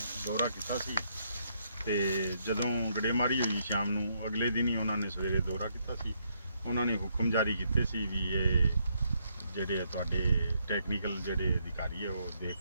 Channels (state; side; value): inverted; both; correlation -0.75